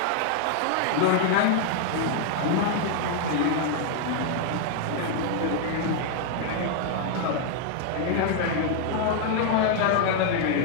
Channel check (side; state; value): both; different; correlation 0.00